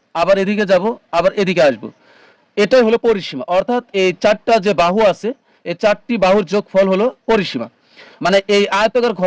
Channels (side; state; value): both; identical; correlation 1.00